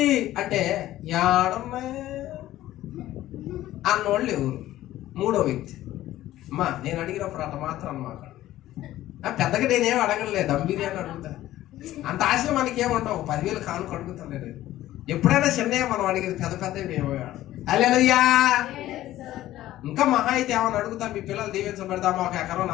అంటే అన్నోళ్ళు ఎవరు? 3వ వ్యక్తి. అమ్మా నేను అడిగినప్పుడు అట్ట మాత్రం అన్నమాట. పెద్దగా నేనేం అడగలేదు, దమ్ బిర్యానీ అడుగుతా. అంత ఆశలు మనకి ఏమంటావు? 10,000 కానుక అడుగుతాను నేను. ఎప్పుడైనా చిన్నయ్య మనం అడిగేది, పెద్ద మేము. హల్లెలూయా. ఇంకా మహా అయితే ఏమని అడుగుతా, మీ పిల్లలు దీవించబడతామా, 1 ఎకరం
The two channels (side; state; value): right; quieter; 14.5 dB